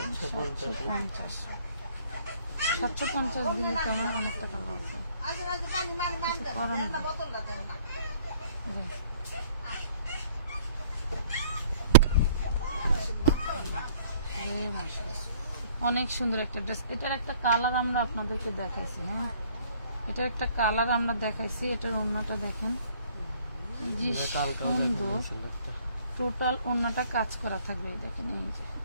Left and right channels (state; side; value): inverted; both; correlation -0.58